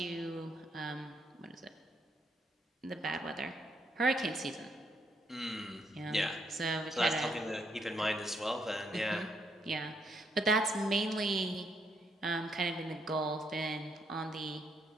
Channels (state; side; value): normal; both; correlation 0.74